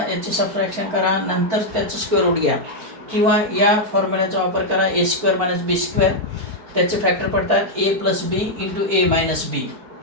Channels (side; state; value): left; late; 4.4 ms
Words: याची सबट्रॅक्शन करा, नंतर त्याचं स्क्वेअर रूट घ्या, किंवा या फॉर्म्युल्याचा वापर करा, A square minus B square. त्याचे फॅक्टर पडतात A plus B into A minus B.